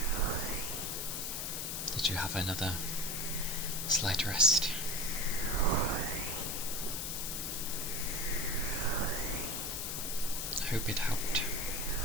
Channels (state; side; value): noise; left; hiss, 2 dB below the sound